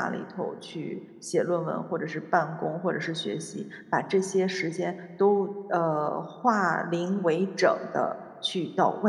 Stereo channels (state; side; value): identical; both; correlation 1.00